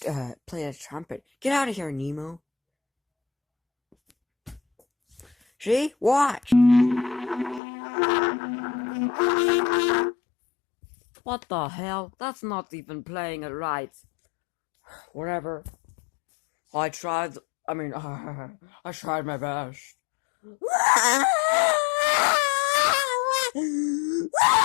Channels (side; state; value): right; drops out; at 7.6 s